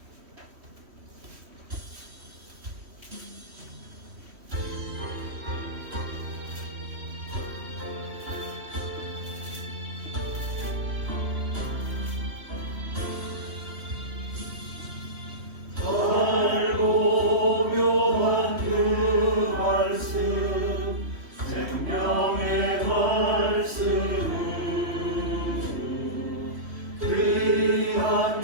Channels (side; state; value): left; late; 3.1 ms